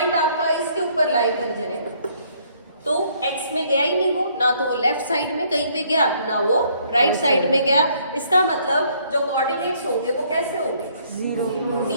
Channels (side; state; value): both; inverted; correlation -0.65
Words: आपका इसके ऊपर लाई कर जाए, तो x में गया ही नहीं वो, ना तो वो लेफ्ट साइड में कहीं पे गया, ना वो राइट साइड में गया. इसका मतलब जो कोऑर्डिनेट्स होंगे वो कैसे होंगे?